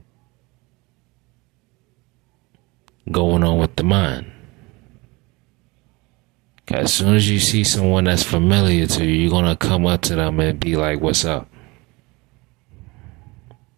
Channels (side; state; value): left; quieter; 24.5 dB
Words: going on with the mind. As soon as you see someone that's familiar to you, you're gonna come up to them and be like, "What's up?"